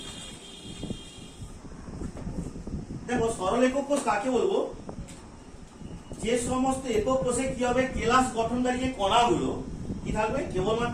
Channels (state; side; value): identical; both; correlation 1.00